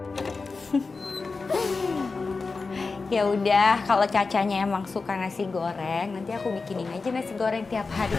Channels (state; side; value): quieter; right; 4.2 dB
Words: Ya udah, kalau Cacanya emang suka nasi goreng, nanti aku bikinin aja nasi goreng tiap hari